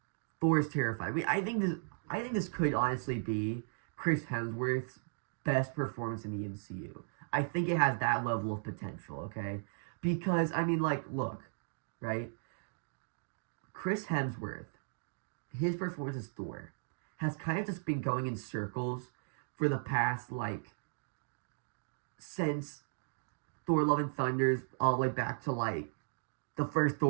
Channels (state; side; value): silent; left; digital silence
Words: Thor is terrified. I think this could honestly be Chris Hemsworth's best performance in the MCU. I think it has that level of potential, okay? Because, I mean, like, look, right? Chris Hemsworth, his performance as Thor, has kind of just been going in circles for the past, like, since Thor Love and Thunder's all the way back to, like, the first